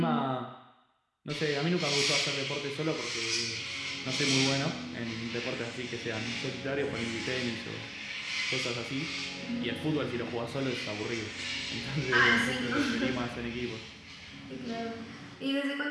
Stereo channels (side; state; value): both; identical; correlation 1.00